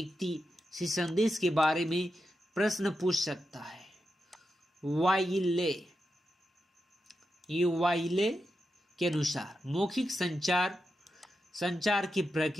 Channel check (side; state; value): both; normal; correlation 0.88